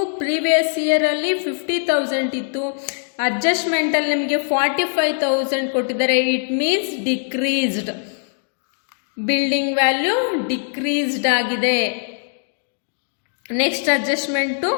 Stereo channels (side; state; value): right; silent; digital silence